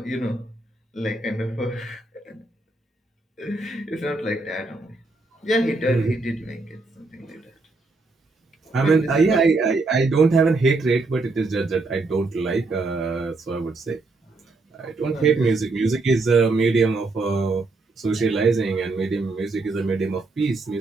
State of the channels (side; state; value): left; quieter; 3.4 dB